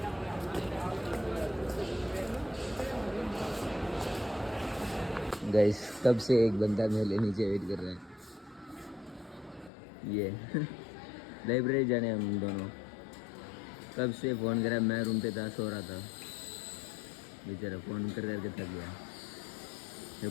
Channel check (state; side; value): drops out; right; at 9.7 s